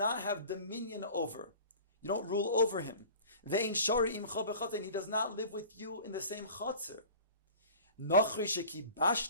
have dominion over. You don't rule over him. Ve'in shari imcha b'chatzer, and he does not live with you in the same chatzer. Nachri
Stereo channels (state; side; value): inverted; both; correlation -0.42